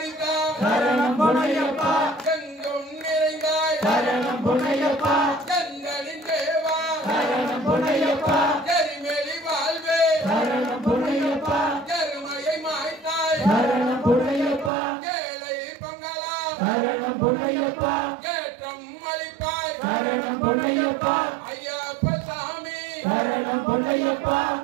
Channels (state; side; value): drops out; left; at 14.7 s